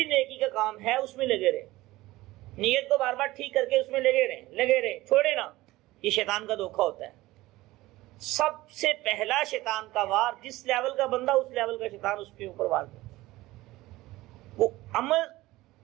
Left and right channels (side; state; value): left; quieter; 18.3 dB